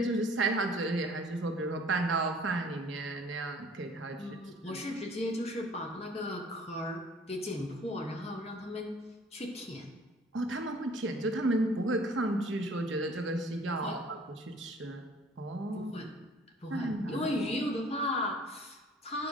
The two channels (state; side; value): normal; both; correlation 0.53